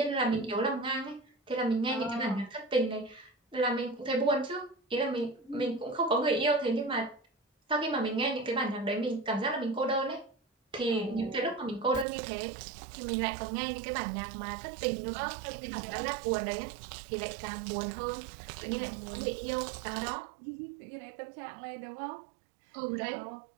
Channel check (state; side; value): drops out; left; at 12.1 s